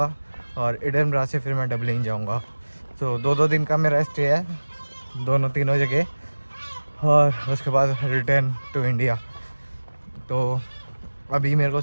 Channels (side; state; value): both; inverted; correlation -1.00